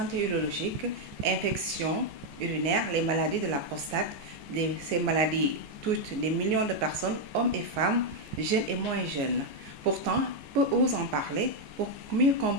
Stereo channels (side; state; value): left; late; 14 ms